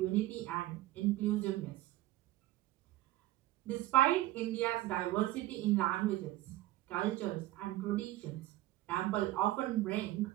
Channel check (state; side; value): quieter; left; 16.1 dB